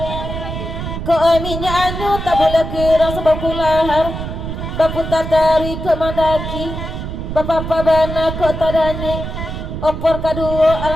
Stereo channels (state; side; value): noise; right; rumble, 6 dB below the sound